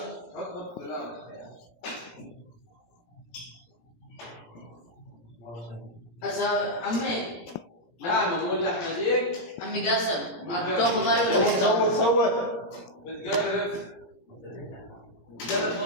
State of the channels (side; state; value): right; late; 17 ms